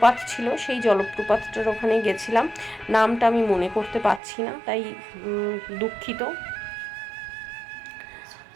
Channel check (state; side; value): drops out; left; at 4.2 s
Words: ছিল, সেই জলপ্রপাতটার ওখানে গেছিলাম, নামটা আমি মনে করতে পারছি না, তাই দুঃখিত।